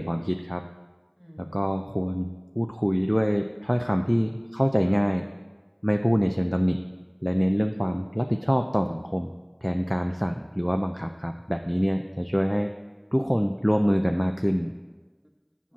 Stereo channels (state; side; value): identical; both; correlation 1.00